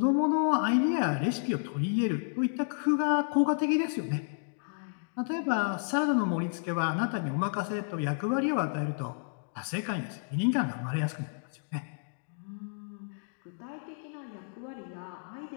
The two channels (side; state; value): right; silent; digital silence